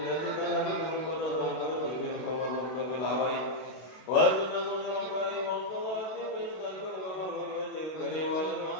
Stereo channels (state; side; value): late; right; 32 ms